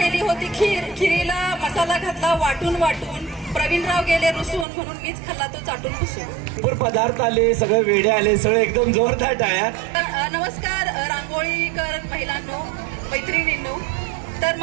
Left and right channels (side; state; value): left; drops out; at 4.7 s